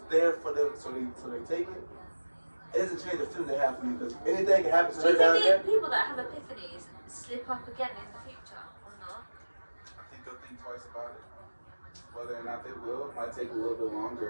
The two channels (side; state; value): both; inverted; correlation -1.00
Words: there for them, so they take it. It doesn't change the feeling they have for you, because anything can happen to Do her you down think there. the people that have epiphanies slip up again in the future or not? I think they'll think twice about it. Whether or not they will, it might take a little bit